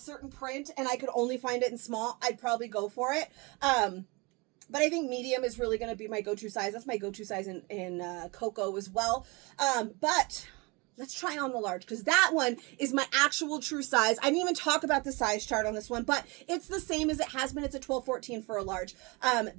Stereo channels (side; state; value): left; quieter; 27.5 dB